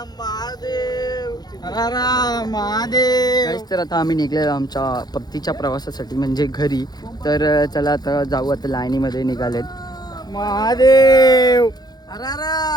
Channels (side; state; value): right; late; 0.19 ms